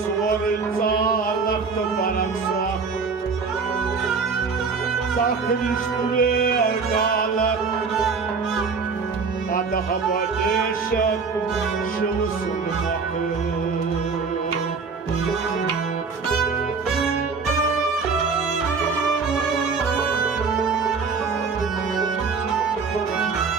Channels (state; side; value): quieter; left; 5.0 dB